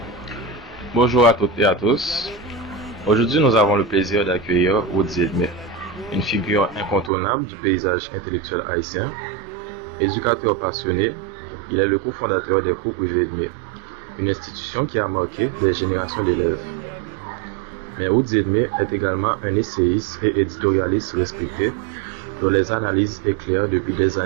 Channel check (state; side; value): drops out; left; at 7.1 s